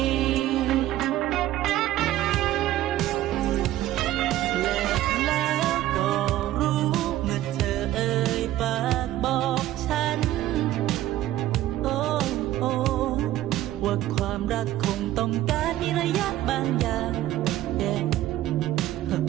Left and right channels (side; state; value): left; quieter; 14.3 dB